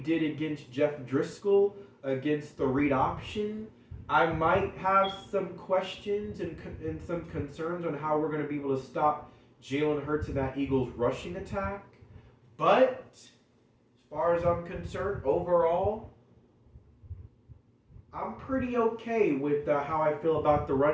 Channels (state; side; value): identical; both; correlation 1.00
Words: against Jeff Driscoll, against the read option, I might have some questions and some concerns on how we're going to be able to stop Jalen Hurts in that Eagles rushing attack. But as far as I'm concerned, overall, I'm pretty okay with how I feel about the